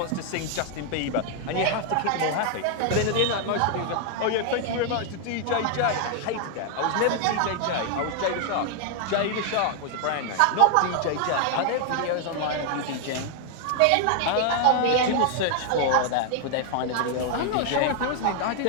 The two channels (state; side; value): different; both; correlation 0.00